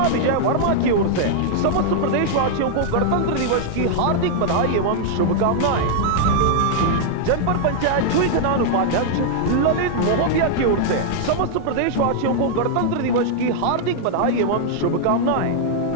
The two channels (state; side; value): different; both; correlation -0.01